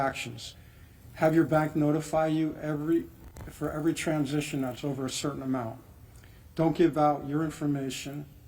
Have your bank notify you for every transition that's over a certain amount. Don't give out your information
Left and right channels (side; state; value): both; identical; correlation 1.00